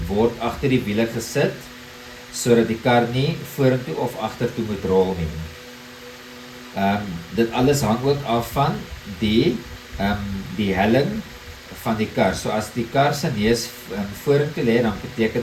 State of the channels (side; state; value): both; identical; correlation 1.00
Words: word agter die wiele gesit sodat die kar nie vorentoe of agtertoe moet rol nie. Dit alles hang ook af van die helling van die kar. So as die kar se neus vorentoe lê, dan beteken